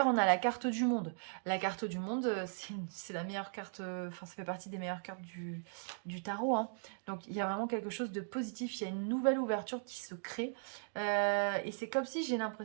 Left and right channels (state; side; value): silent; left; digital silence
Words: on a la carte du monde. La carte du monde, c'est la meilleure carte, enfin, ça fait partie des meilleures cartes du tarot, hein. Donc, il y a vraiment quelque chose de positif. Il y a une nouvelle ouverture qui se crée. Et c'est comme si j'ai